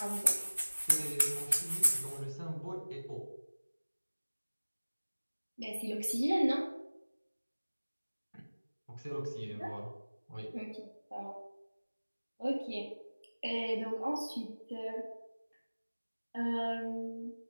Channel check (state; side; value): inverted; both; correlation -1.00